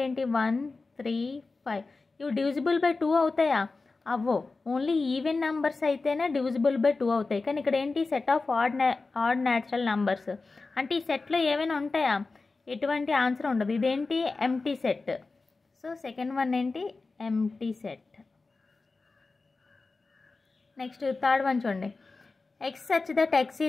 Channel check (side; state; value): right; quieter; 3.8 dB